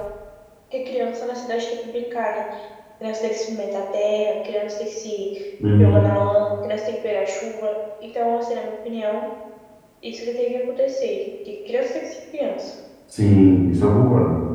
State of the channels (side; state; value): both; identical; correlation 1.00